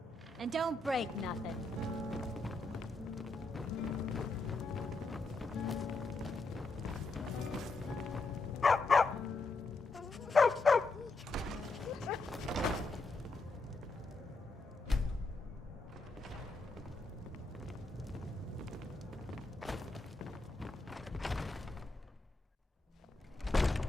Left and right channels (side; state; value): right; quieter; 3.3 dB